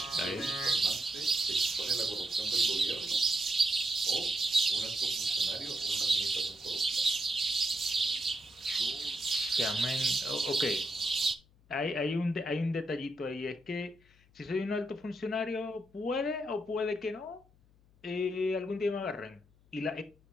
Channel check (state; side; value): noise; left; hum, 30 dB below the sound